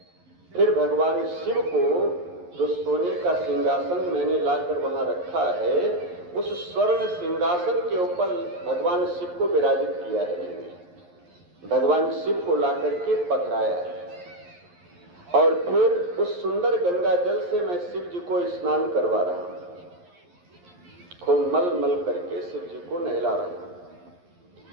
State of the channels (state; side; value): late; left; 11 ms